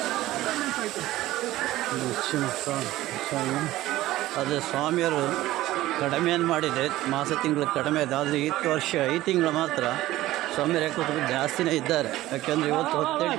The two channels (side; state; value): left; quieter; 16.0 dB